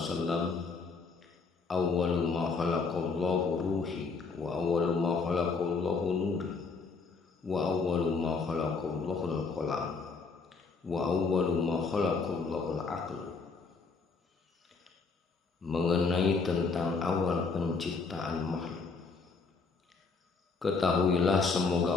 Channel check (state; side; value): quieter; right; 4.6 dB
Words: awwalu ma khalaqallahu ruhi wa awwalu ma khalaqallahu nuri wa awwalu ma khalaqallahu al-qalam wa awwalu ma khalaqallahu al-aql. Mengenai tentang awal penciptaan makhluk, ketahuilah